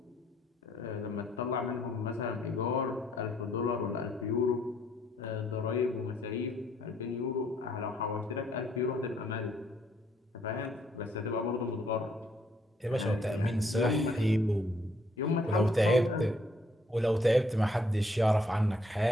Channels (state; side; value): normal; both; correlation 0.68